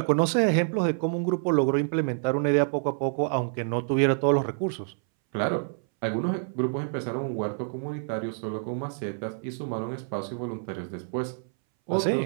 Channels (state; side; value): silent; left; 60 dB below the other